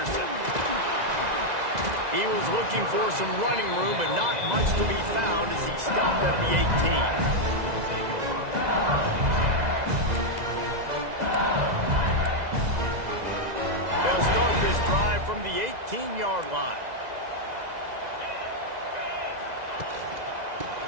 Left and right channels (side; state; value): left; late; 2.0 ms